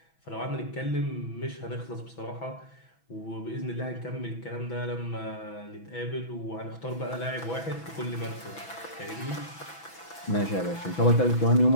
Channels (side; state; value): right; late; 6.1 ms